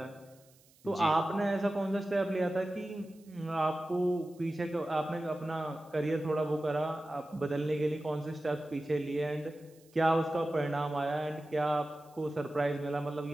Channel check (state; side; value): noise; right; hiss, 29 dB below the sound